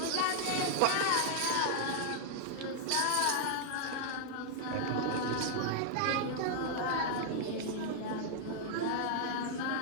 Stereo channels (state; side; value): different; both; correlation -0.01